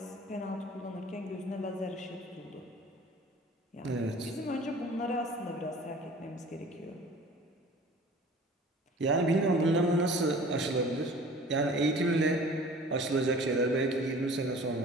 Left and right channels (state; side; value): normal; both; correlation 0.46